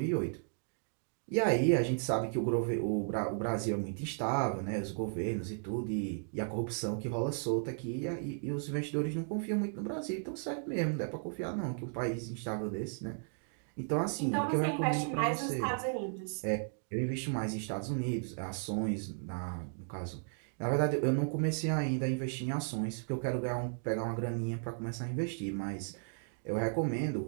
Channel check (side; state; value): left; silent; digital silence